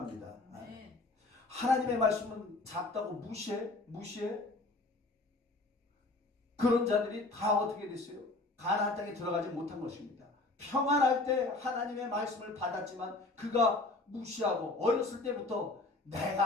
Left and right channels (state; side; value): quieter; right; 3.1 dB